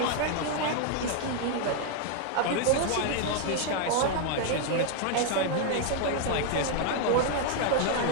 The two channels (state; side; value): different; both; correlation 0.00